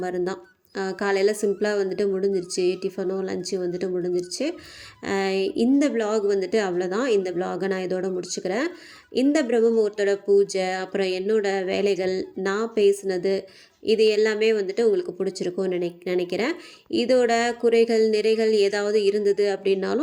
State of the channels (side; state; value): both; identical; correlation 1.00